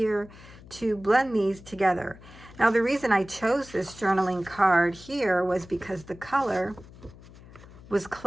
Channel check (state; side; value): noise; left; hum, 20 dB below the sound